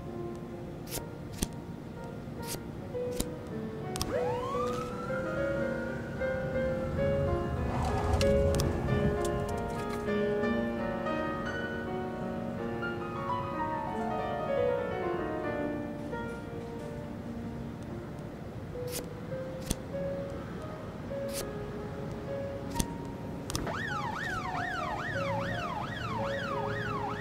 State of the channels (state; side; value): identical; both; correlation 1.00